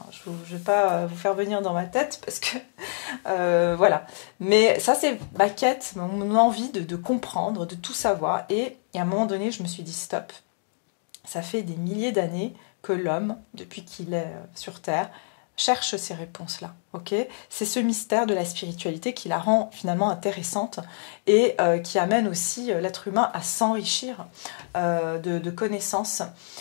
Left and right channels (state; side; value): silent; right; digital silence